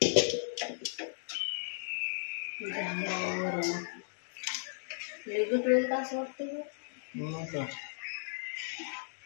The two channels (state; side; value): silent; right; digital silence